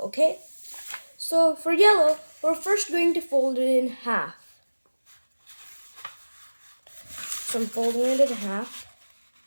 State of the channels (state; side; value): inverted; both; correlation -1.00